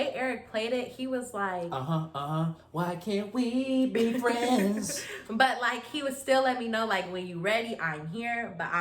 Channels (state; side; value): identical; both; correlation 1.00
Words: Eric played it, he was like, why can't we be friends? But like, he would still let me know, like, when you ready, I'm here, but